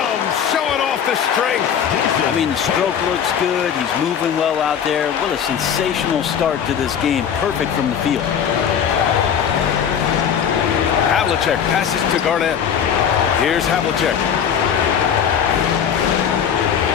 showing off the strength. I mean, the stroke looks good. He's moving well out there. What a sensational start to this game. Perfect from the field. Havlicek passes to Garnett. Here's Havlicek.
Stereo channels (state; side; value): quieter; right; 8.1 dB